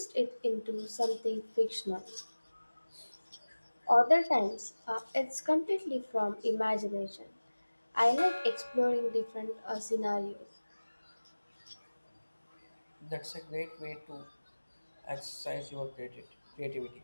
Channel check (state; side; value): inverted; both; correlation -1.00